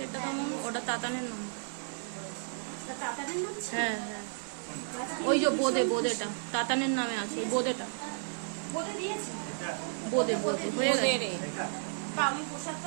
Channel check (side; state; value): left; silent; 56 dB below the other